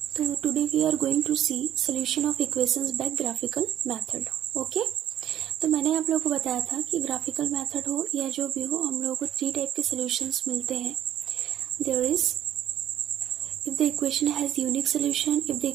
तो today we are going to see solution of equations by graphical method. Okay? तो मैंने आप लोगों को बताया था कि ग्राफिकल मेथड हो या जो भी हो, हम लोगों को 3 टाइप के सॉल्यूशंस मिलते हैं. There is if the equation has unique solution, if the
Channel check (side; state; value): left; quieter; 11.3 dB